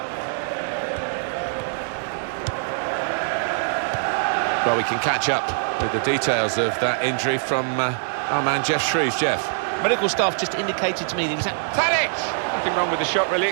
Well, we can catch up with the details of that injury from our man Jeff Shreves. Jeff. Medical staff just indicated to me that he was at... Tadic! Nothing wrong with the shot really,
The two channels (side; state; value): left; silent; digital silence